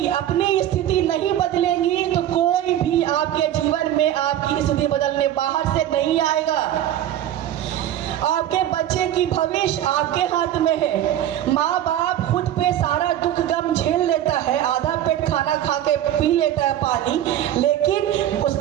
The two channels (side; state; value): left; quieter; 11.9 dB